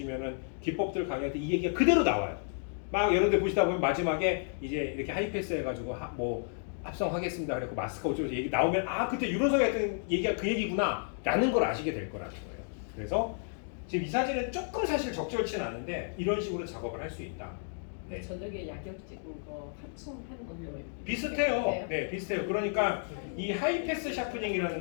기법들 강의할 때 이 얘기가 그대로 나와요. 막 여러 데 보시다 보면 마지막에 이제 이렇게 하이패스 해가지고 뭐 합성하겠습니다. 그래서 마스크 어쩌고 얘기 나오면 아 그때 유로석이 했던 얘기가 그 얘기구나 라는 걸 아시게 될 거라는 거예요. 그래서 지금 이 사진은 조금 사실 적절치는 않은데 이런 식으로 작업을 할 수 있다. 네. 저녁에 야경 찍은 거 합성하는 것도 비슷해요. 네, 비슷해요. 그러니까 이 하이패스 샤프닝이라는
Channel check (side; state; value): right; silent; digital silence